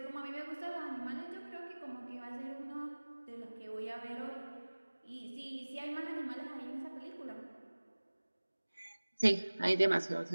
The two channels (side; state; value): both; inverted; correlation -1.00